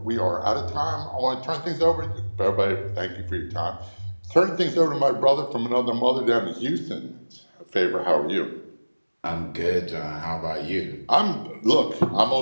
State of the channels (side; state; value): both; inverted; correlation -1.00